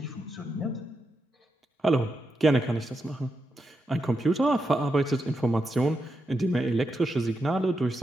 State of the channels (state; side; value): normal; both; correlation 0.85